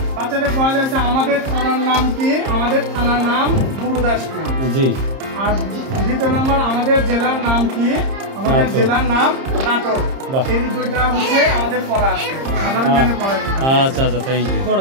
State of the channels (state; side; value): late; left; 30 ms